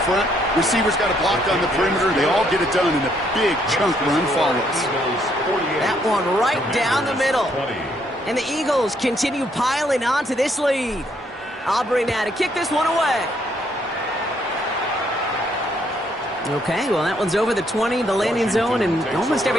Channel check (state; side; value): normal; both; correlation 0.71